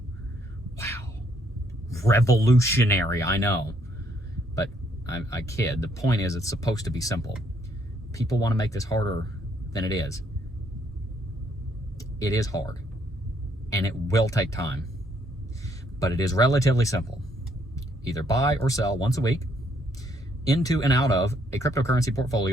Wow. Revolutionary, I know. But I kid. The point is, it's supposed to be simple. People want to make this harder than it is. It is hard. And it will take time. But it is relatively simple. Either buy or sell once a week into and out of a cryptocurrency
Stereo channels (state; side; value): normal; both; correlation 0.70